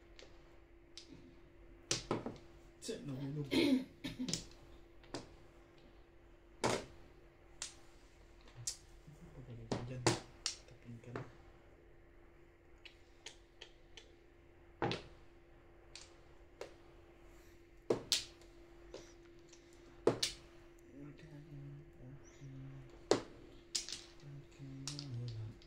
Tse, nahulog. Pagaling ka dyan. Tapin ka na.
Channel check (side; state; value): both; identical; correlation 1.00